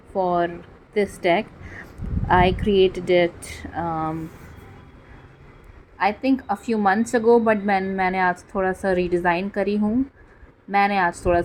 for this deck. I created it I think a few months ago but मैंने आज थोड़ा सा रीडिज़ाइन करी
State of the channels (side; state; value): both; identical; correlation 1.00